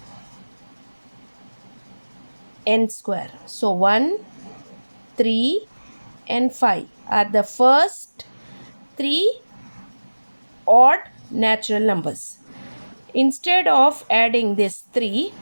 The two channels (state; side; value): inverted; both; correlation -1.00